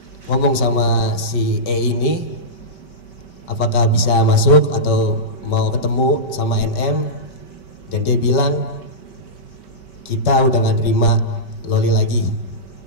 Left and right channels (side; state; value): right; late; 5.2 ms